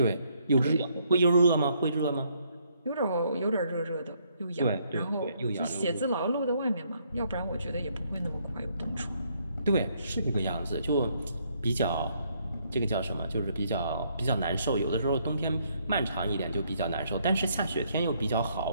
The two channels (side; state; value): both; inverted; correlation -0.70